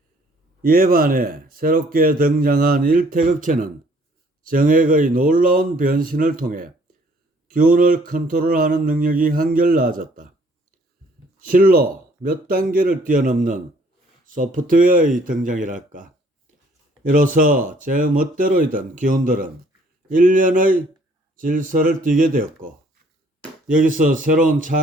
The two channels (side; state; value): both; normal; correlation 0.60